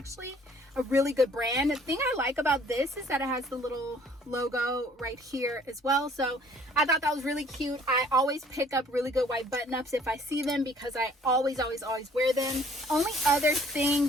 a really good brand. The thing I like about this is that it has the little logo right here as well. So I thought that was really cute. I always pick up really good white button ups if I see them because I always wear them. Only other thing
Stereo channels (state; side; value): normal; both; correlation 0.58